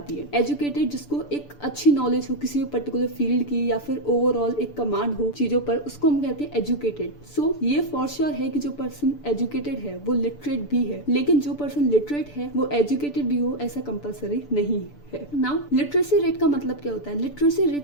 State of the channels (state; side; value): late; right; 6.9 ms